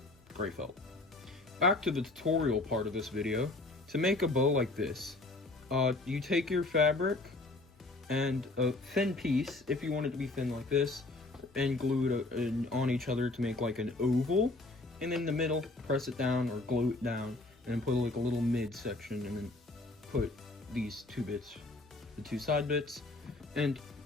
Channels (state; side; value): quieter; right; 3.0 dB